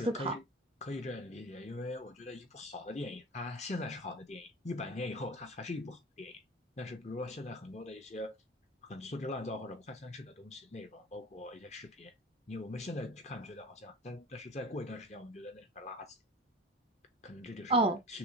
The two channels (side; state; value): both; normal; correlation 0.36